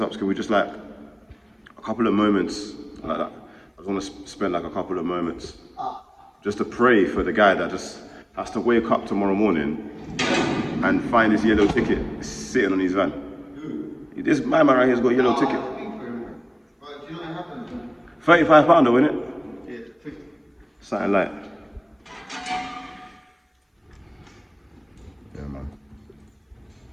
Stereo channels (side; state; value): both; identical; correlation 1.00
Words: up, can we just like, a couple of moments like that. I just want to spend like a couple of moments just to pray for the guy that just has to wake up tomorrow morning and find his yellow ticket sitting on his van. This man right here has got a yellow ticket. £35 though, innit? Yeah, 50. Something like. Yeah, man.